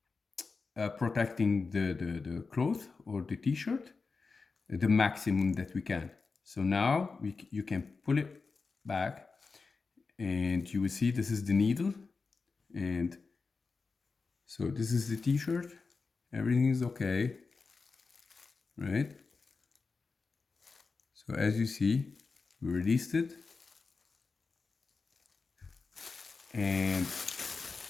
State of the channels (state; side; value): quieter; right; 4.4 dB